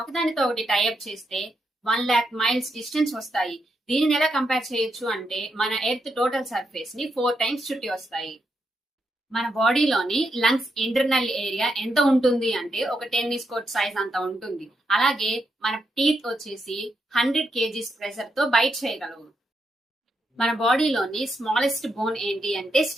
ఒకదానితో ఒకటి టైఅప్ చేస్తే 1,00,000 మైల్స్ డిస్టెన్స్ వస్తాయి. దీనిని ఎలా కంపేర్ చేయొచ్చు అంటే మన ఎర్త్ టోటల్ సర్ఫేస్ ని 4 టైమ్స్ చుట్టి వస్తాయి. మన బాడీలోని లంగ్స్ ఇంటర్నల్ ఏరియా ఎంత ఉంటుంది అంటే ఒక టెన్నిస్ కోర్ట్ సైజ్ అంత ఉంటుంది. అలాగే మన టీత్ వచ్చేసి 100 కేజీస్ ప్రెషర్ తో బైట్ చేయగలవు. మన బాడీలోని స్మాలెస్ట్ బోన్ ఏంటి అంటే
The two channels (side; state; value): both; normal; correlation 0.82